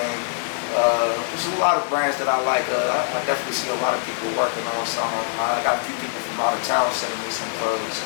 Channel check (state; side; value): silent; right; digital silence